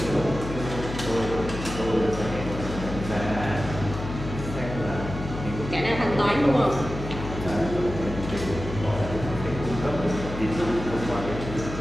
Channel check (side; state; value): left; noise; hum, 8 dB below the sound